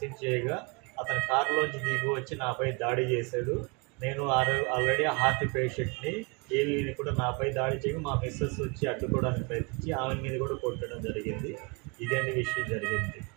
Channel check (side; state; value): left; quieter; 30.1 dB